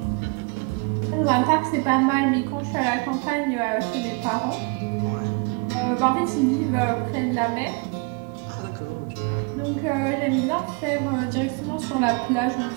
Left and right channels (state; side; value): quieter; left; 31.1 dB